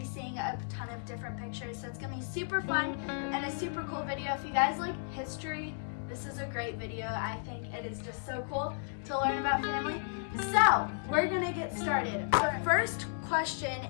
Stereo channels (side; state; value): right; silent; digital silence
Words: seeing a ton of different pictures. So it's going to be super fun and a super cool video. If you guys like history, this is a great video. I think it is just so cool to learn about family. So we're going to get started. Our first